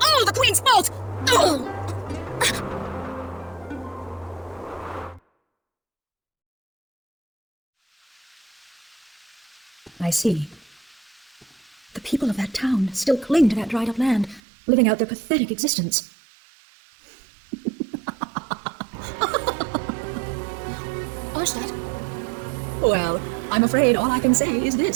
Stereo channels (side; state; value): left; drops out; at 14.4 s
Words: the Queen's fault! Oh. I see. The people of that town still cling to that dried-up land, living out their pathetic existence. Arstad? Well, I'm afraid all I can say is